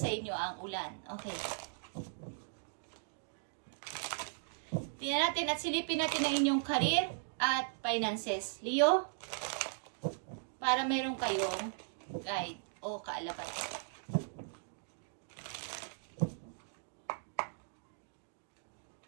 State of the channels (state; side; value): silent; left; digital silence